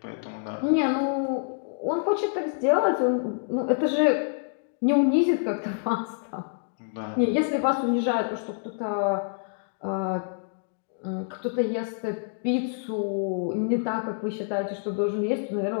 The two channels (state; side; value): silent; right; digital silence